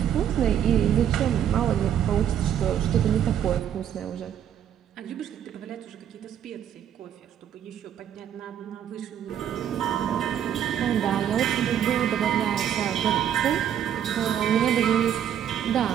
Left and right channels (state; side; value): quieter; left; 9.6 dB